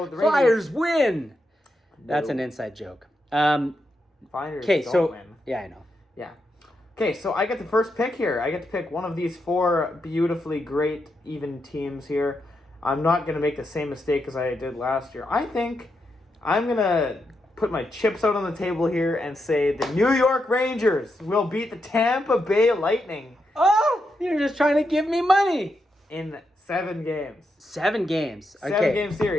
the Flyers win. That's an inside joke. Flyers don't win. Yeah, I know. Yeah. Okay, so I get the first pick here. I get to pick one of these four beautifully great, even teams here. I'm not going to make the same mistake as I did last year. I think I'm going to put my chips out on the table here and say the New York Rangers will beat the Tampa Bay Lightning. Oh, you're just trying to give me money. In 7 games. 7 games. Okay. 7-game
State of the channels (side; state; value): both; normal; correlation 0.84